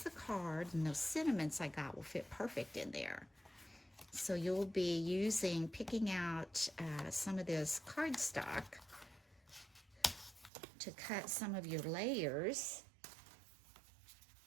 the card, and those sentiments I got will fit perfect in there. So you'll be picking out some of this cardstock to cut some of your layers.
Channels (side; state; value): left; drops out; at 10.5 s